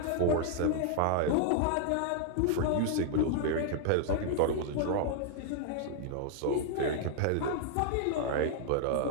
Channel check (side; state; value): both; different; correlation 0.00